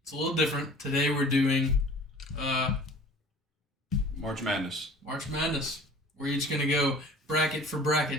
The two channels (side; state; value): both; normal; correlation 0.46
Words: it's a little different. Today we're doing March Madness. March Madness. We're each gonna go bracket for